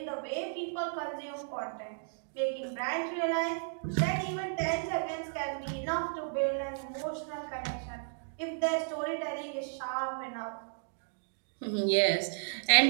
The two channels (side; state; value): left; silent; digital silence